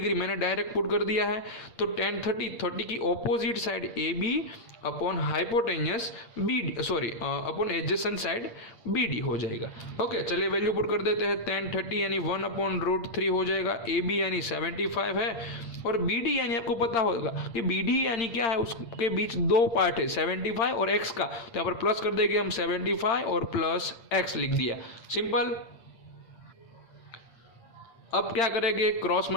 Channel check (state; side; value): late; right; 8.7 ms